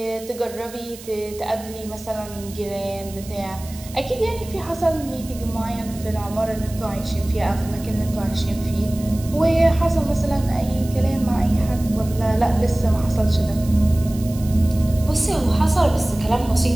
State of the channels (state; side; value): noise; right; hiss, 17 dB below the sound